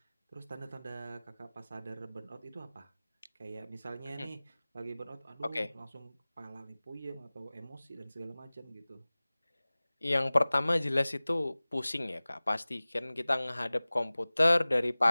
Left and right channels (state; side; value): inverted; both; correlation -0.99